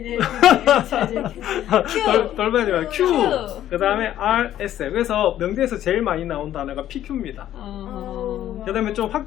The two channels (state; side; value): quieter; right; 12.1 dB